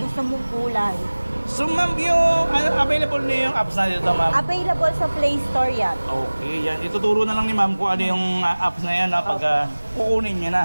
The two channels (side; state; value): both; inverted; correlation -1.00